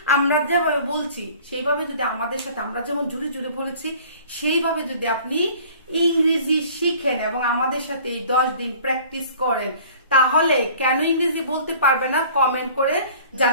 আমরা যেভাবে বলছি সেইভাবে যদি আমাদের সাথে, আমরা যেমন জুড়ে জুড়ে বলেছি সেইভাবে যদি আপনি ইংরেজি শিখেন এবং আমাদের সাথে এই 10 দিন প্র্যাকটিস করেন, তাহলে কেন ইংরেজি বলতে পারবে না কমেন্ট করে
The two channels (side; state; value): both; inverted; correlation -0.49